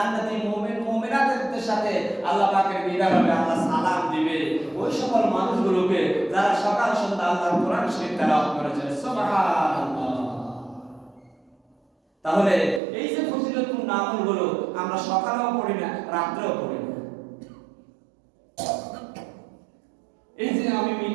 মুমিন মুমিনাতের সাথে আল্লাহ পাকের দিদার হবে, আল্লাহ সালাম দিবে। দিবে ওই সকল মানুষগুলোকে যারা সকাল সন্ধ্যা আল্লাহর কোরআন শরীফ তেলাওয়াত করেছে। সুবহানাল্লাহ। তাহলে এই যে ফজিলতপূর্ণ আমলগুলো আমরা সকালেও পড়ি না, রাত্রেও পড়ি না। এই যে আমি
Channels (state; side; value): drops out; left; at 12.8 s